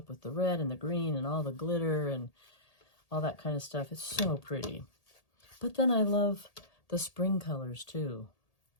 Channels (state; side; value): late; right; 1.8 ms